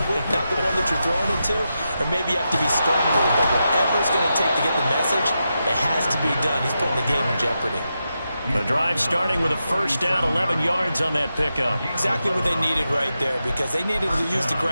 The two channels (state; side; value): inverted; both; correlation -0.88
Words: week, not the one that you're throwing it to? Or maybe you have to be stern a little bit. Whatever it's going to take to get the message, it has to be done. He's putting the game in jeopardy. The drive starting with a first down, 11 yards on that pickup. Exactly what they needed right there, because they needed to use the